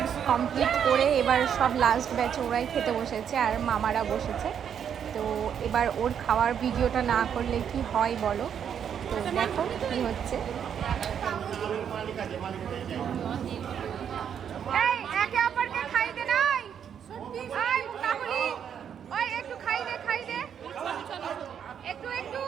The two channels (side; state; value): left; quieter; 8.3 dB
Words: কমপ্লিট করে এবার সব লাস্ট ব্যাচে ওরাই খেতে বসেছে আর মামারা বসেছে। তো এবার ওর খাওয়ার ভিডিওটা না করলে কি হয় বলো। তো দেখো কি হচ্ছে। এই একে অপরকে খাইতে নাই, এই কাকুলি ওই একটু খাই দে একটু